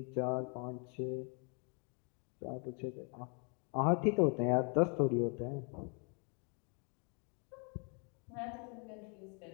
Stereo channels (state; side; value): quieter; right; 38.1 dB